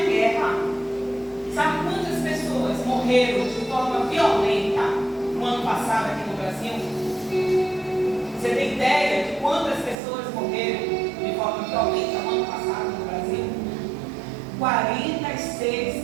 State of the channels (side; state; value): left; drops out; at 10.0 s